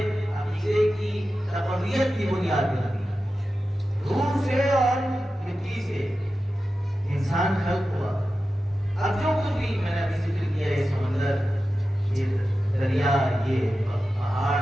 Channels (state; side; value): normal; both; correlation 0.93